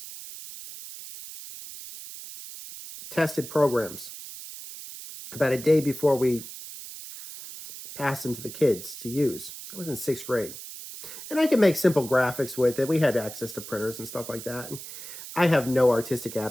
tested programs about a day before we passed them to the kids to use. I was in 6th grade. And I could make simple graphics with it. We had access to printers and stuff like that. And I have no artistic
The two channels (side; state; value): right; noise; hiss, 12 dB below the sound